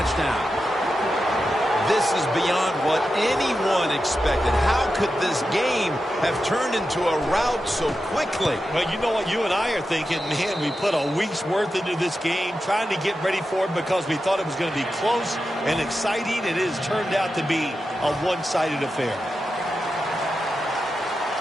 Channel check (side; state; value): both; normal; correlation 0.90